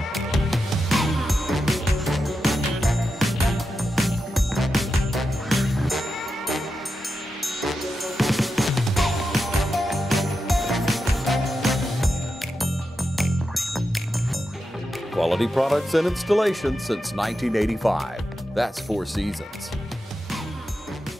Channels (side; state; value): both; normal; correlation 0.88